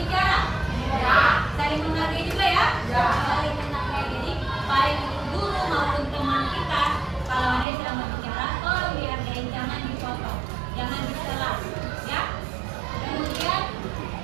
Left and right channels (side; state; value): left; drops out; at 7.7 s